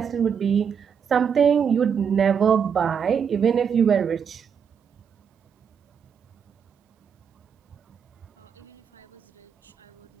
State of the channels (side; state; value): left; quieter; 7.2 dB